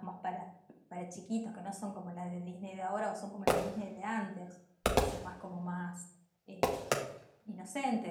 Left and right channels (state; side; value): identical; both; correlation 1.00